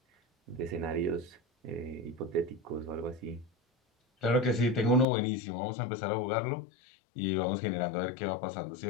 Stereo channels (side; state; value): right; drops out; at 5.1 s